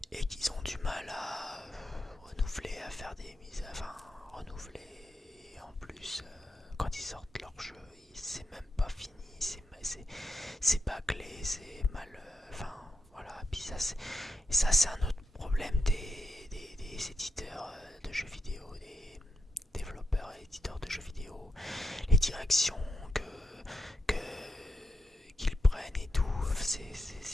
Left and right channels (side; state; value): both; normal; correlation 0.85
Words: Et qu'ils ont du mal à renouveler, à faire des mises. Enfin, renouveler. En plus, quand ils sortent leur jeu, c'est même pas fini. C'est bâclé, c'est mal. Enfin, voilà. Puis ça, c'est un autre problème des éditeurs de jeux vidéo, des développeurs et éditeurs de jeux vidéo, les directions qu'ils prennent et tout,